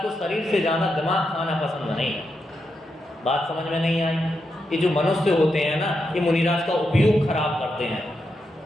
को शरीर से ज़्यादा दिमाग खाना पसंद नहीं है। बात समझ में नहीं आई? ये जो मनुष्य होते हैं ना, ये मुनिराज का उपयोग खराब करते हैं।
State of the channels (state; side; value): normal; both; correlation 0.85